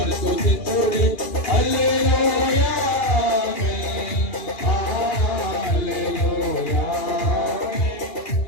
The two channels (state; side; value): late; right; 2.4 ms